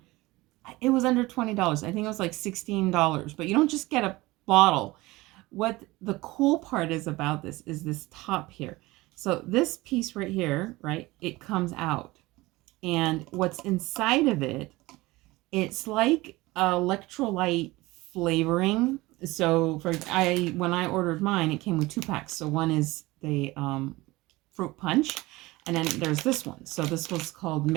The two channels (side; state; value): left; quieter; 20.5 dB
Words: It was under $20. I think it was $16. But you don't just get a bottle. What the cool part is about this is this top here. So this piece right here, right, it comes out. And what's inside of it, it's like electrolyte flavoring. So when I ordered mine, it came with 2 packs. So one is the fruit punch, and then there's this one. So this was called